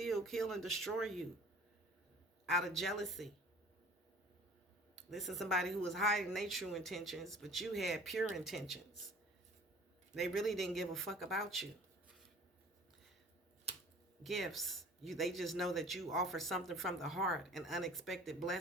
kill, and destroy you out of jealousy. This is somebody who was hiding their true intentions, but you had pure intentions. They really didn't give a fuck about you. Gifts. They just know that you offer something from the heart, an unexpected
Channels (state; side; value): normal; both; correlation 0.48